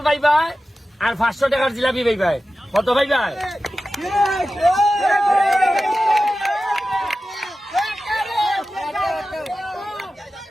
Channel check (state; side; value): normal; both; correlation 0.94